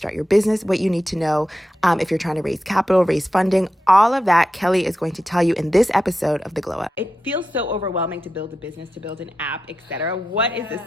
your business, what you need to know if you're trying to raise capital, raise funding, all of that Kelly is going to tell you in this episode of The Glow Up. It feels so overwhelming to build a business, to build an app, etc. What is the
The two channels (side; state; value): both; normal; correlation 0.89